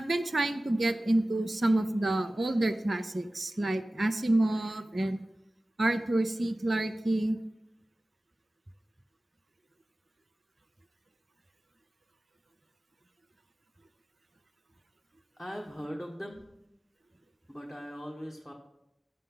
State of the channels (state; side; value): normal; both; correlation 0.97